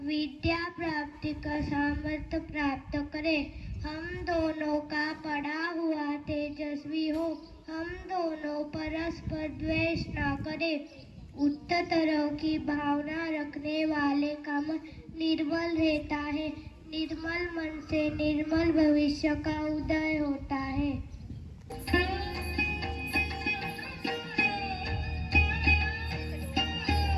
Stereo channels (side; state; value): both; identical; correlation 1.00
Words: विद्या प्राप्ति का सामर्थ्य प्राप्त करें. हम दोनों का पढ़ा हुआ तेजस्वी हो. हम दोनों परस्पर द्वेष न करें. उत्तर तरह की भावना रखने वाले का मन निर्मल रहता है. निर्मल मन से निर्मल भविष्य का उदय होता है.